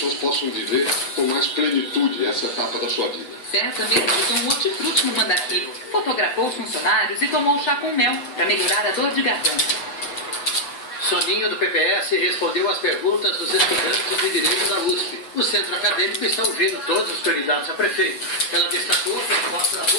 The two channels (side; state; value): right; late; 7.9 ms